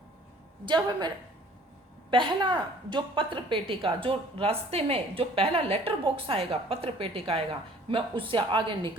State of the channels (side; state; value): both; normal; correlation 0.53